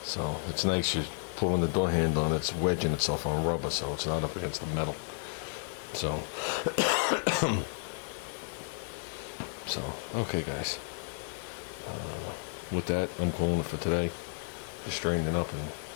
So, it's nice. You're pulling the door handle and it's wedging itself on rubber, so it's not up against the metal. So, okay, guys. With that, I'm calling it for today. Just straightening up and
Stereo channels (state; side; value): silent; right; digital silence